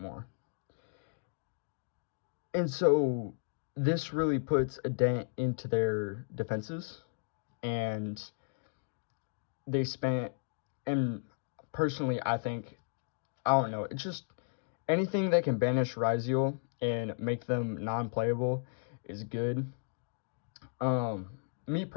And so this really puts a dent into their defenses, and they spent, and personally I think, I don't know, it's just anything that can banish Ryziel and make them non-playable is good. Me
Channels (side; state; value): right; silent; digital silence